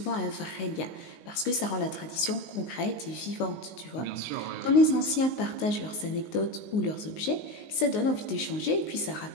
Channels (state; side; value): late; right; 19 ms